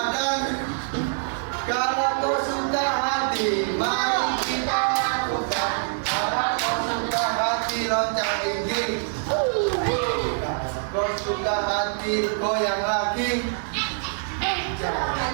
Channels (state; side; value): silent; left; digital silence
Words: Kalau kau suka hati, mari kita lakukan. Kalau kau suka hati, loncat gigi. Kau suka hati, goyang lagi.